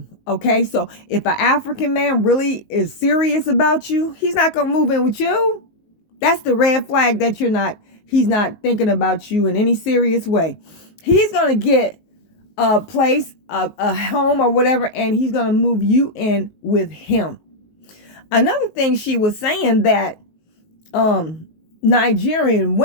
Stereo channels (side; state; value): right; late; 19 ms